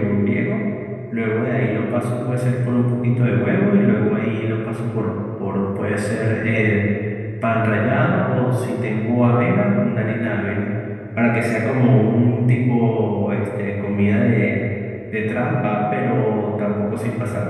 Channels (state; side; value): identical; both; correlation 1.00